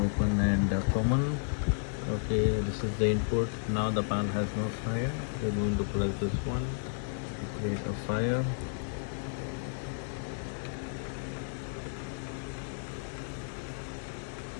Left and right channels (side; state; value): right; silent; digital silence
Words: and common. Okay, this is the input. Now the panel has no fire. We're going to press this one to create a fire.